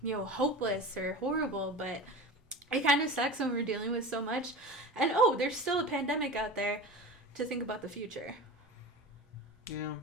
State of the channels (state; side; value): normal; both; correlation 0.31